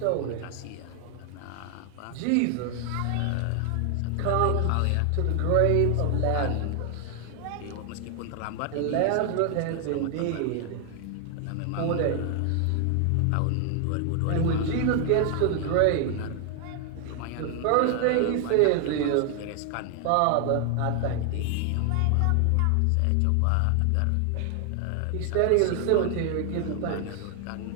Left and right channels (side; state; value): both; different; correlation 0.00